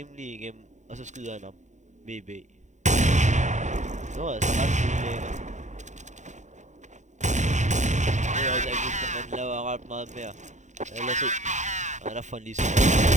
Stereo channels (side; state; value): left; late; 0.35 ms